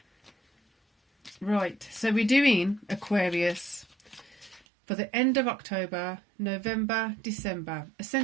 Right, so we're doing Aquarius for the end of October, November, December,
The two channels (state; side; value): drops out; left; at 4.6 s